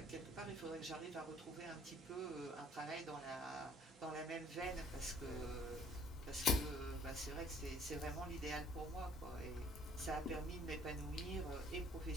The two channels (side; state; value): both; normal; correlation 0.58